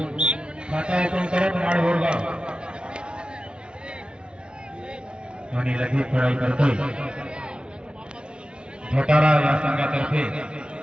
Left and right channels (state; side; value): late; left; 0.056 ms